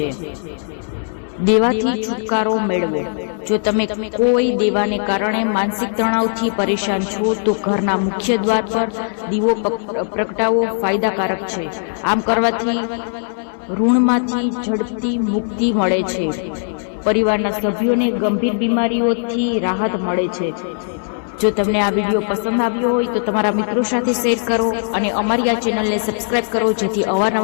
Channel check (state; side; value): silent; right; digital silence